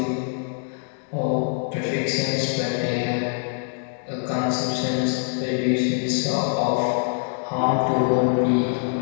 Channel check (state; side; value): silent; right; 63 dB below the other